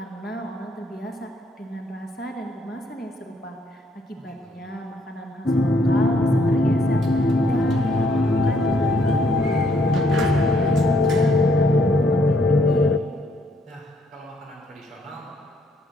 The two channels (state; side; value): normal; both; correlation 0.69